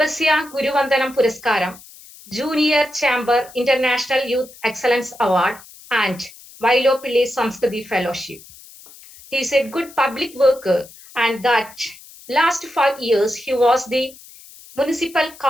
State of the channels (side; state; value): left; noise; hiss, 21 dB below the sound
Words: Guruvandanam Puraskaram, Junior Chamber International Youth Excellence Award, and Vailopilli Samskruti Fellowship. He is a good public worker, and that last 5 years he was the Municipal